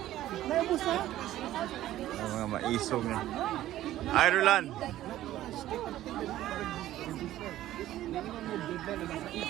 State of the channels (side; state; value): left; quieter; 13.9 dB